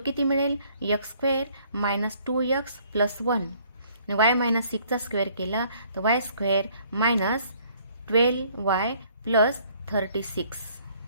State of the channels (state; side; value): inverted; both; correlation -0.61